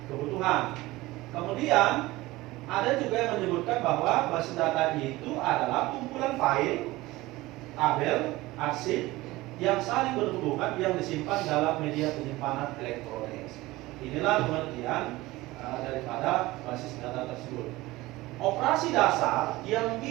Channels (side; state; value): left; quieter; 19.2 dB